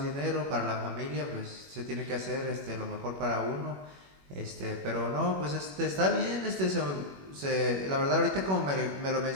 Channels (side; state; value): left; late; 21 ms